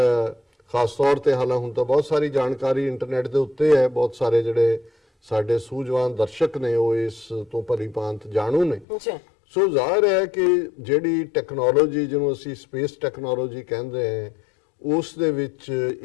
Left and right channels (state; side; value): drops out; right; at 8.8 s